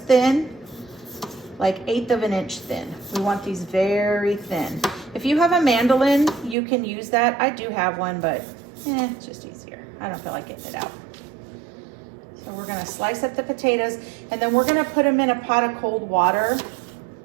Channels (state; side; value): drops out; left; at 6.6 s